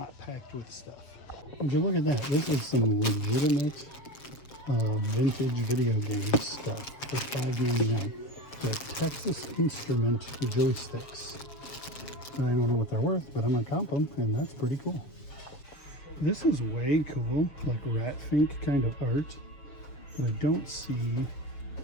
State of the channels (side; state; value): right; late; 7.0 ms